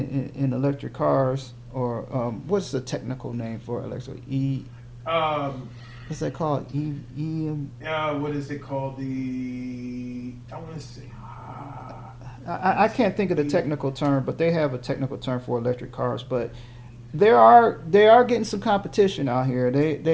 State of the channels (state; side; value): identical; both; correlation 1.00